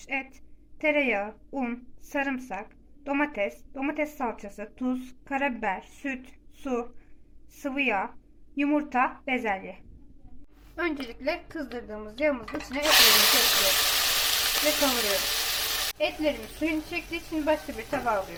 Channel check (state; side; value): identical; both; correlation 1.00